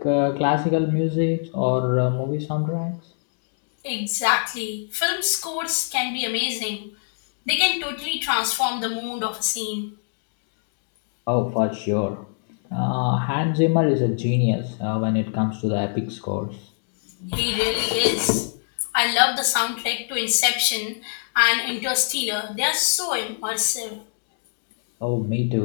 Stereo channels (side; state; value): right; silent; digital silence